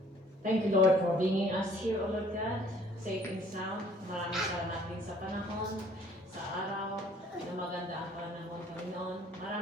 thank you, Lord, for bringing us here, O Lord God, safe and sound. Maraming salamat din sa panahon, sa araw, na maganda ang panahon, Panginoon.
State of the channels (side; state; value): both; normal; correlation 0.57